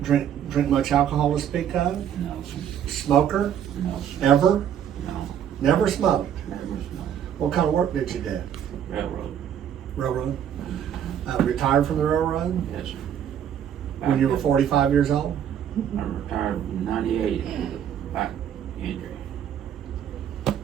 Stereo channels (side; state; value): left; quieter; 9.4 dB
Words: drink much alcohol to speak of? No, sir. Smoker? No, sir. Ever? No, Never smoked? never smoked. What kind of work did you do? Railroad. Railroad? Retired from the railroad? Yes, sir. When you were 45 years old? I retired in '98 with a back injury.